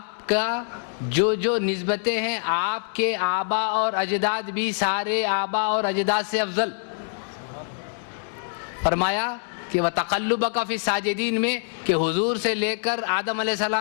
کا جو نسبتیں ہیں آپ کے آبا اور اجداد بھی سارے آبا اور اجداد سے افضل. فرمایا کہ وَتَقَلُّبَكَ فِي السَّاجِدِينَ میں کہ حضور سے لے کر آدم علیہ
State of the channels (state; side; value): silent; right; digital silence